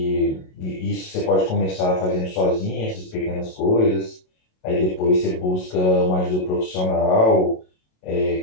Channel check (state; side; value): late; right; 27 ms